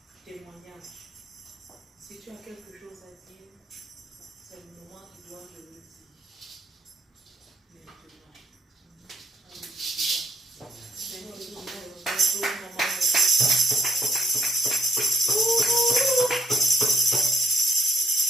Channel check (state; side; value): normal; both; correlation 0.73